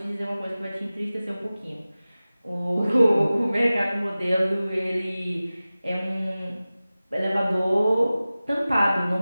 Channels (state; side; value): inverted; both; correlation -0.97